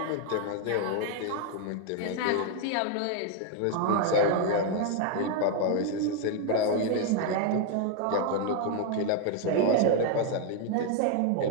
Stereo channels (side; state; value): both; different; correlation 0.00